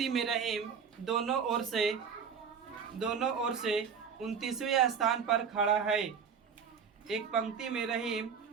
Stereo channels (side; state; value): left; quieter; 6.6 dB